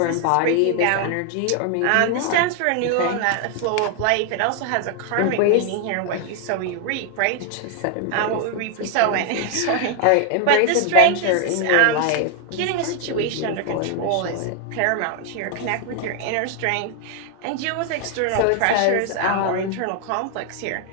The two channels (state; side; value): different; both; correlation 0.00